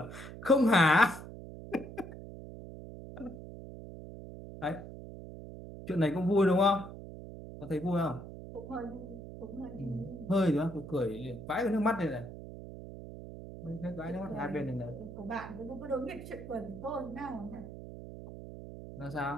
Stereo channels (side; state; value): right; noise; hum, 12 dB below the sound